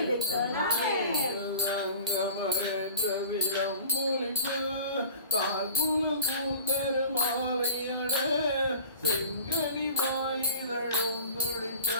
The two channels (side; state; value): both; inverted; correlation -0.43